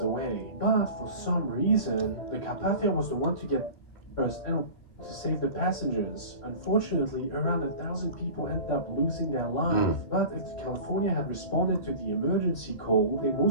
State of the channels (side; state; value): right; late; 2.9 ms